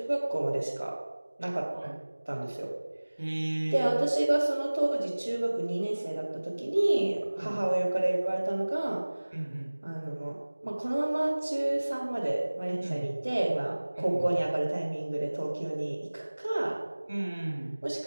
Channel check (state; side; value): inverted; both; correlation -1.00